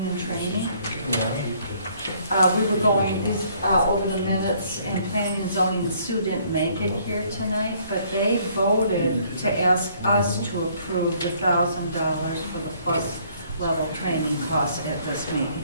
and training. Yeah. We were going over the minutes, and planning and zoning, Sue didn't make it here tonight, but they voted to ask us to approve the $1,000 for the plus level training cost at this meeting.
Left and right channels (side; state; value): both; inverted; correlation -0.63